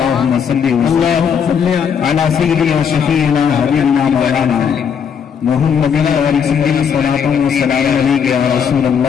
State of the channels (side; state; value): right; quieter; 7.3 dB